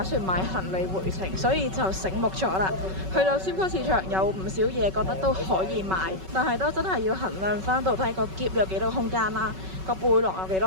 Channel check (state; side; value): late; left; 5.3 ms